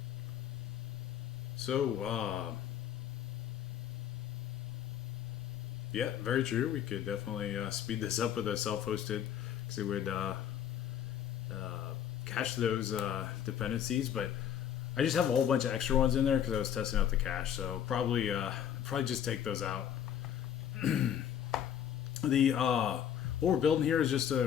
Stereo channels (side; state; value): right; quieter; 9.6 dB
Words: So, yeah, very true. We could definitely speed this up with a self-hosted, because it would cache those dependencies. But I just have a whole bunch of extra ones in there because I was testing out the cache. So probably just take those out. What we're building here is just